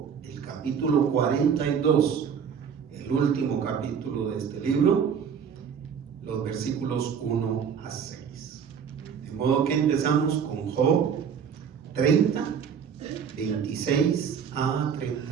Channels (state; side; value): quieter; left; 7.2 dB